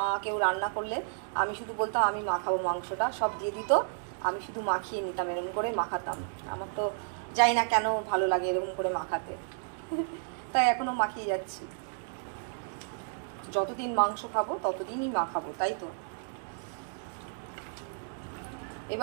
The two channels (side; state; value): left; silent; digital silence